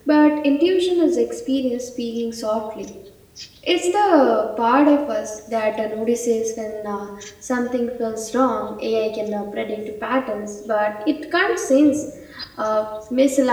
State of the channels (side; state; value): both; identical; correlation 1.00